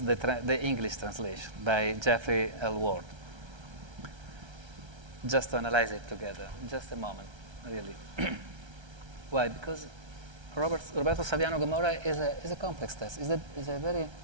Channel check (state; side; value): late; left; 1.3 ms